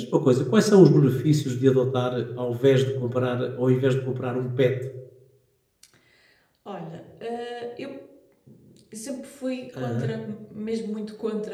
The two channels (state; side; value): identical; both; correlation 1.00